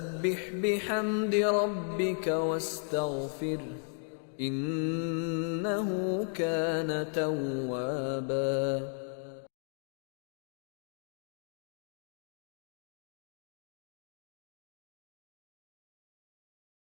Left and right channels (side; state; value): right; silent; 54 dB below the other